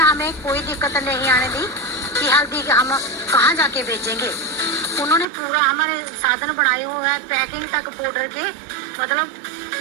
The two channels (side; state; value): left; drops out; at 5.2 s